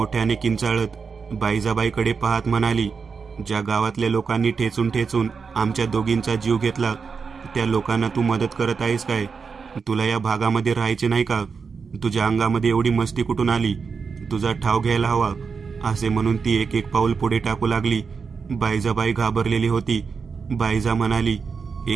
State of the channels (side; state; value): left; quieter; 5.4 dB